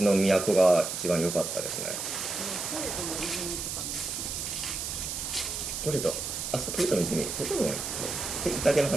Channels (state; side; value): noise; right; hiss, 4 dB below the sound